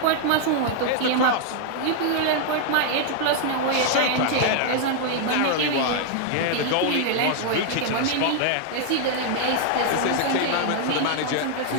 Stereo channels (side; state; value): both; different; correlation 0.00